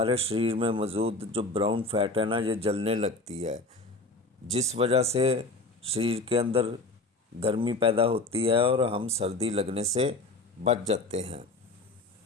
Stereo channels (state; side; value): quieter; right; 3.2 dB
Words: शरीर में मौजूद जो ब्राउन फैट है ना ये जलने लगती है, जिस वजह से शरीर के अंदर गर्मी पैदा होती है और हम सर्दी लगने से बच जाते हैं।